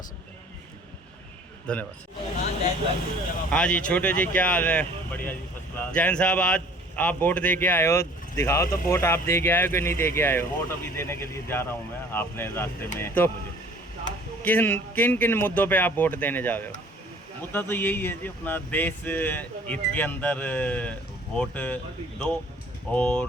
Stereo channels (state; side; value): normal; both; correlation 0.52